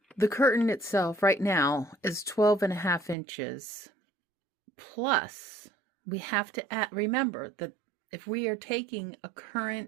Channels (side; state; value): left; drops out; at 3.2 s